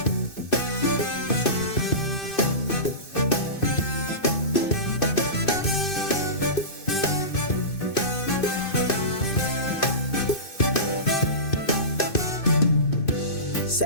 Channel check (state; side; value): late; right; 2.6 ms